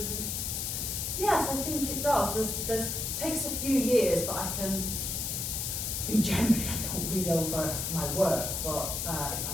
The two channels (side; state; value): left; noise; hiss, 2 dB below the sound